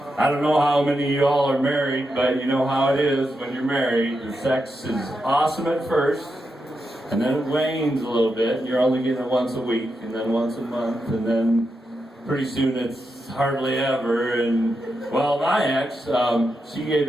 I don't know how many of y'all are married, but you know how it is when you're married. The sex is awesome at first, and then it wanes a little bit, and you're only getting it once a week, and then once a month, and then pretty soon it's hardly ever. And, well, my ex, she gave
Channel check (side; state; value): both; normal; correlation 0.86